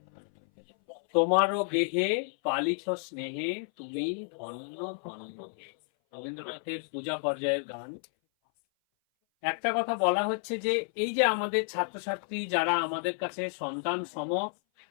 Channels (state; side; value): silent; right; 57 dB below the other